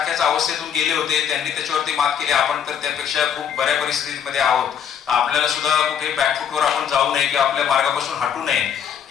अवस्थेतून गेले होते, त्यांनी त्याच्यावरती मात केली, आपण तर त्यापेक्षा खूप बऱ्या परिस्थितीमध्ये आहोत. आपल्याला सुद्धा कुठे बॅकफुटवर आपण जाऊ नये किंवा आपल्या मार्गापासून हटू नये,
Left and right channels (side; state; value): right; quieter; 8.3 dB